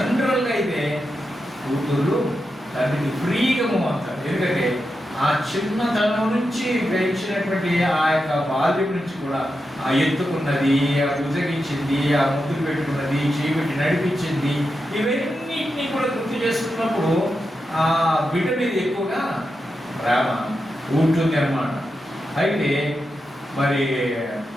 అయితే కూతురు తండ్రికి ఫ్రీగా అవుతారు. ఎందుకంటే ఆ చిన్నతనం నుంచి పెంచినటువంటి ఆ యొక్క బాల్యం నుంచి కూడా ఆ ఎత్తుకున్నది, ఆ బుజగించింది, ఆ ముద్దులు పెట్టుకున్నది, చేపెట్టి నడిపించింది, ఇవన్నిటినీ కూడా గుర్తు చేసుకున్నప్పుడు ఆ బిడ్డ మీద ఎక్కువగా ప్రేమ ఉంటుంది అన్నమాట. అయితే మరి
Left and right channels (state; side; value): normal; both; correlation 0.88